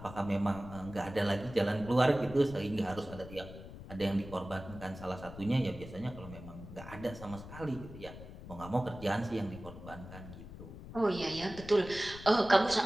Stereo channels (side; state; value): left; noise; rumble, 13 dB below the sound